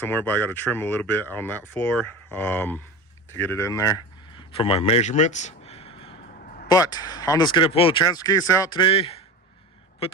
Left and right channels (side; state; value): both; normal; correlation 0.29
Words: but I got to trim a little bit on that floor to get it in there for my measurements. But I'm just gonna pull the transfer case out today, put